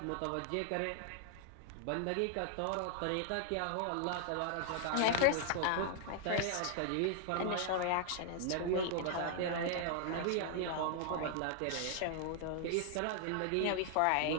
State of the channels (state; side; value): different; both; correlation 0.00